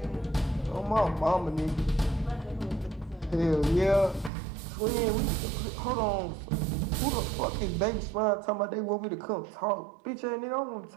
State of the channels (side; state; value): left; drops out; at 4.3 s